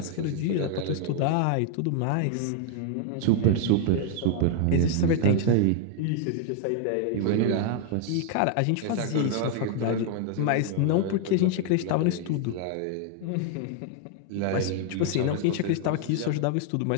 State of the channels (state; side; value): different; both; correlation 0.00